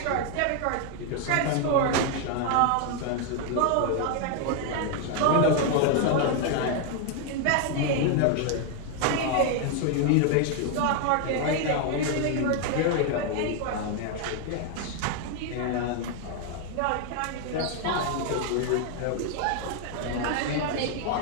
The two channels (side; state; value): both; different; correlation 0.00